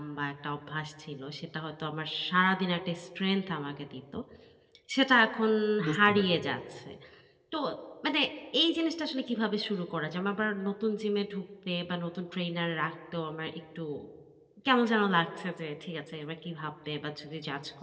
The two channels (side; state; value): both; identical; correlation 1.00